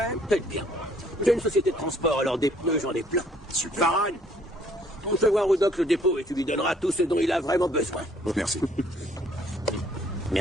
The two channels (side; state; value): both; normal; correlation 0.62